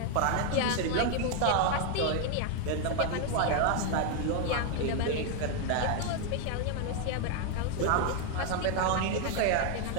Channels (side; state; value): both; different; correlation 0.01